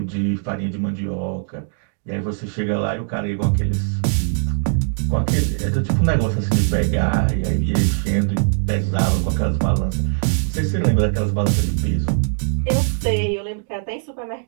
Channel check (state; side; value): silent; left; digital silence